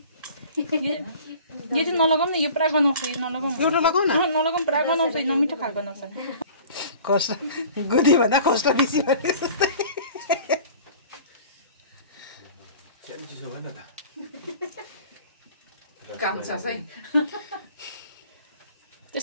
यो चाहिँ नलगाउँ न यो पुरा गनाउँछ यो नलगाउँ एउटा लगाउ न नलगाउँ पुरा गनाउँछ यो नमिठो खाल गनाउँछ कष्ट गुदी भन्दा कष्ट बेसी भने जस्तै चिसो भएन त काम छ है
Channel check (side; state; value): both; inverted; correlation -0.45